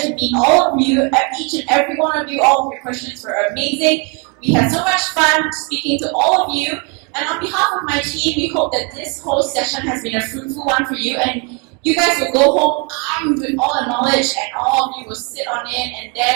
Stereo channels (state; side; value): quieter; left; 33.9 dB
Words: to meet all of you. Each and every one of you, all of your questions were amazing. We had so much fun speaking to all of you. And on behalf of my team, we hope that this whole session has been a fruitful one for you. And you guys will go home armed with all the knowledge, and all of you will sit on it and